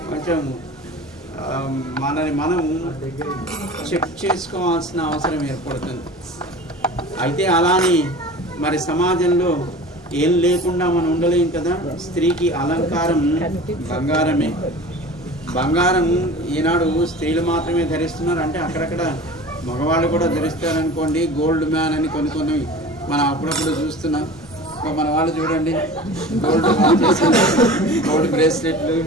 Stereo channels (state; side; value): normal; both; correlation 0.38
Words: కొంచెం మనని మనం చెక్ చేసుకోవాల్సిన అవసరం ఏర్పడుతుంది. అయితే అలాని మరి సమాజంలో ఏం లేకుండా మనం ఉండలేం కదా. స్త్రీకి అలంకారం బంగారమే. బంగారం ఈనాడు స్త్రీలు మాత్రమే ధరిస్తున్నారు అంటే అక్కడక్కడ మగవాళ్ళు కూడా ధరిస్తారనుకోండి. గోల్డ్ మ్యాన్ అని కొన్ని మనం అప్పుడప్పుడు చూస్తున్నాం. మన వాళ్ళు చూడండి గోల్డ్ బ్రేస్లెట్లు.